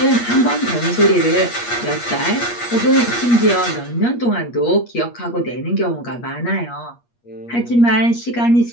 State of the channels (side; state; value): right; late; 8.4 ms